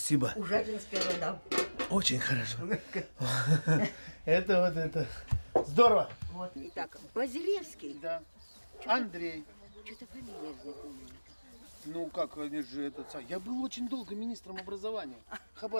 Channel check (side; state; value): both; inverted; correlation -1.00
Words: Ужатинская вода. Очень хорошо. Это вот это. Здорово. Вот. Итак, Базилевский. Да. Андрей. Что-то фамилия знакомая. Ну как, они же этот... Я был очень долго министром образования